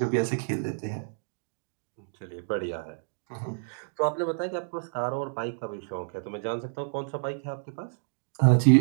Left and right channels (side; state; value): left; silent; digital silence